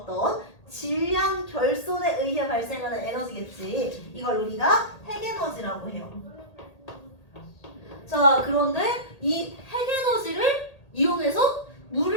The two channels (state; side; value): late; right; 1.8 ms